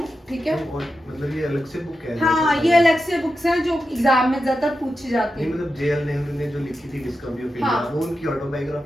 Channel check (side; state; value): both; normal; correlation 0.89